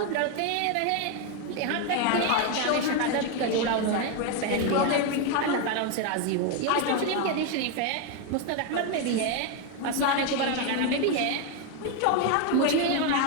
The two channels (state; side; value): different; both; correlation 0.01